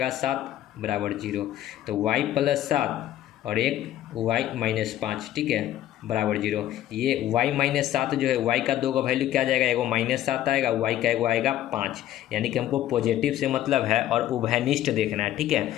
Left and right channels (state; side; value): quieter; right; 13.0 dB